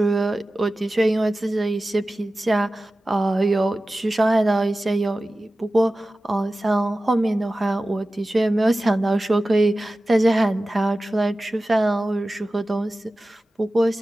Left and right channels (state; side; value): normal; both; correlation 0.95